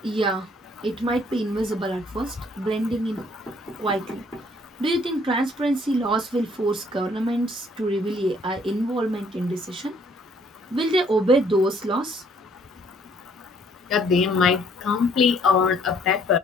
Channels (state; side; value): normal; both; correlation 0.63